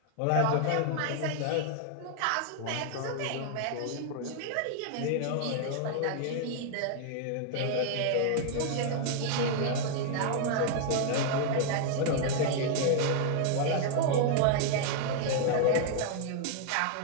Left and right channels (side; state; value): both; different; correlation 0.00